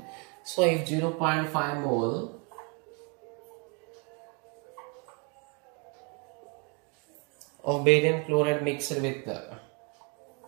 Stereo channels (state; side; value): quieter; left; 33.9 dB